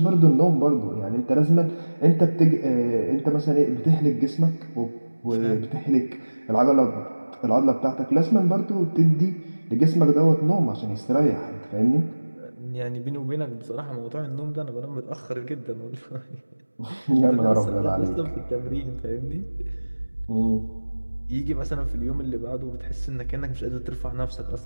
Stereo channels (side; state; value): both; inverted; correlation -1.00